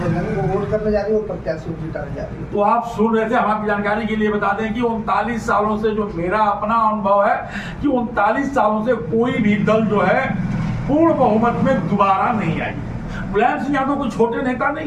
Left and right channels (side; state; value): both; identical; correlation 1.00